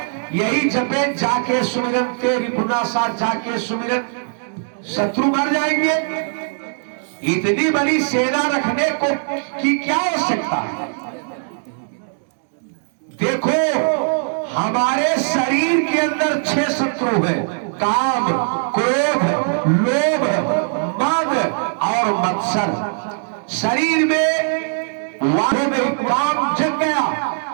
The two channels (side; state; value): left; silent; digital silence